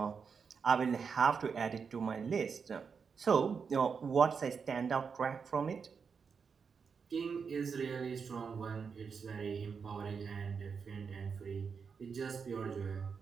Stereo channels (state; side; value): quieter; left; 5.9 dB